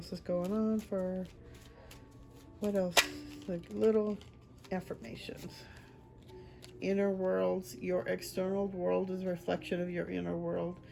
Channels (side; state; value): both; identical; correlation 1.00